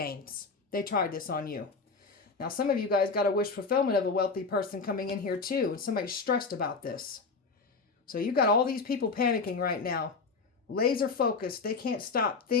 They tried this on you. Now, some of you guys got a wish fulfillment of a wealthy person coming in here too, and somebody's stressed about this. So you got all these people panicking right now. Laser focused. They can't stop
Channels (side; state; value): right; quieter; 4.4 dB